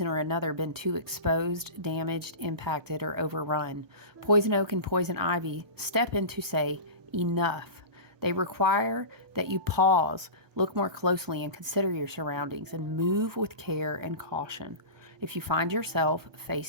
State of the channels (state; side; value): late; left; 1.2 ms